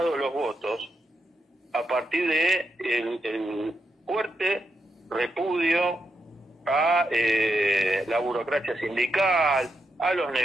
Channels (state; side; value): normal; both; correlation 0.83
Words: los votos a partir de el fuerte repudio a la burocracia sindical, a los